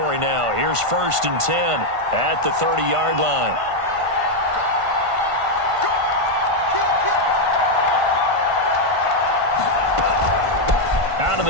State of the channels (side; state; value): left; late; 1.5 ms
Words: now. Here's 1st and 10 at the 30-yard line. Out of